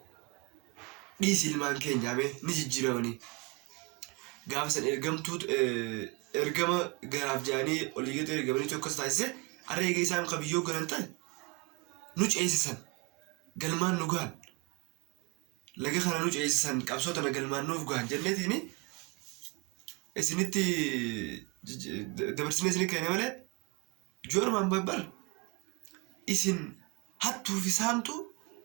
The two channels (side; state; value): left; quieter; 26.9 dB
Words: dhiisi ilmaan keenyaame ni jijjiiramanii gaafa san ergama garaaf jaanii oliigeetu ergamanii tokkos taasise areega isaan qabiyyoo galan ta'e nu ceesisan galmaan nu gahan laga kana nu ceesisan qabsoo tana galmaan nuuf gahan jenneetiini isinitti dabarsine isinii kenne malee joormaan babbar isin hattuu fi saamtu